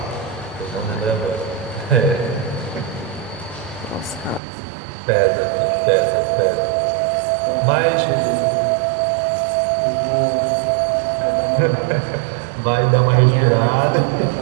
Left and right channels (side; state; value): left; drops out; at 4.4 s